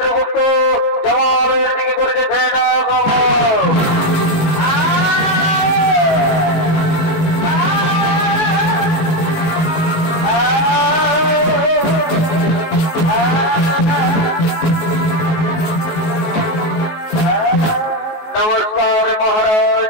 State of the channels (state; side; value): late; right; 18 ms